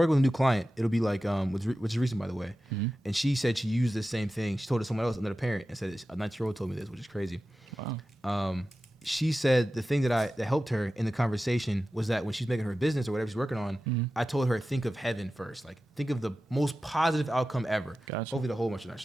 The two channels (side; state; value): both; normal; correlation 0.94